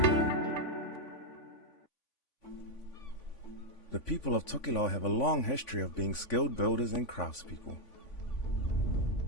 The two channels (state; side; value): late; right; 3.5 ms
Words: The people of Tokelau have a long history of being skilled builders and craftspeople.